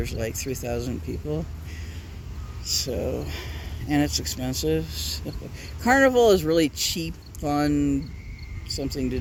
like 3,000 people. So, and it's expensive. So, Carnival is really cheap, fun, something to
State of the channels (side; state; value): both; identical; correlation 1.00